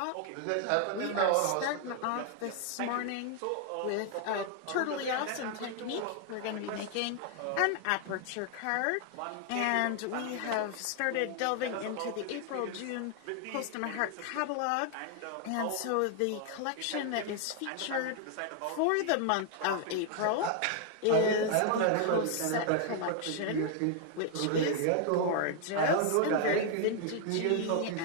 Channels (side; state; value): both; different; correlation 0.00